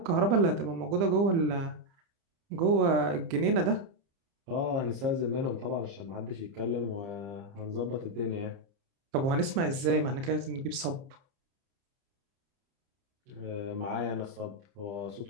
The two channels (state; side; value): late; left; 30 ms